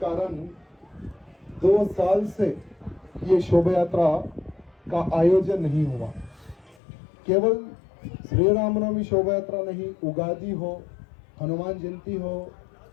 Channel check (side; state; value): right; drops out; at 6.8 s